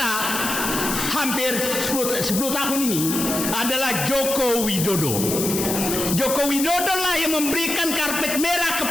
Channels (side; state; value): left; noise; hiss, 3 dB below the sound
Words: hampir 10 tahun ini adalah Joko Widodo. Joko Widodo lah yang memberikan karpet merah